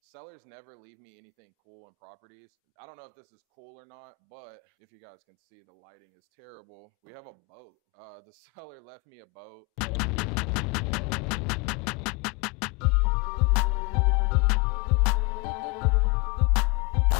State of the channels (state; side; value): quieter; right; 24.6 dB